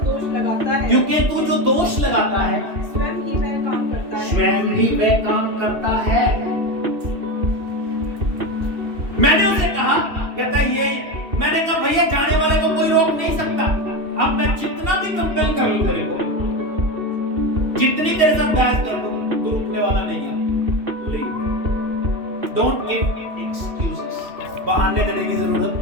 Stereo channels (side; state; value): left; late; 2.7 ms